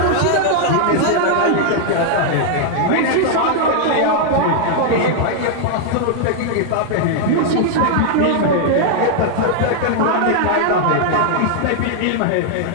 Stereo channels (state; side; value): different; both; correlation 0.00